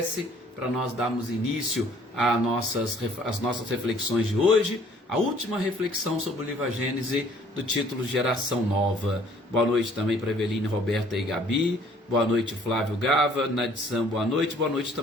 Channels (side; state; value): both; normal; correlation 0.58